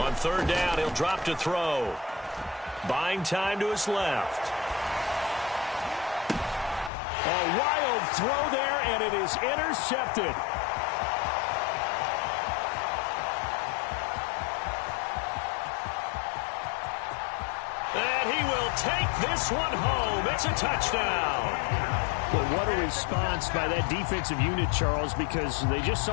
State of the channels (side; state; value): right; drops out; at 6.9 s